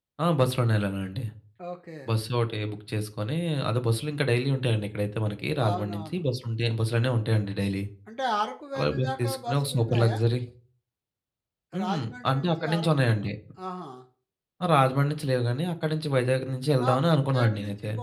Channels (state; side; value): identical; both; correlation 1.00